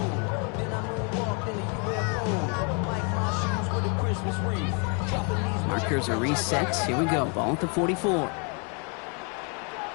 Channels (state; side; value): quieter; right; 35.5 dB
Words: Markers are reset. Here we go. Ball at the 44.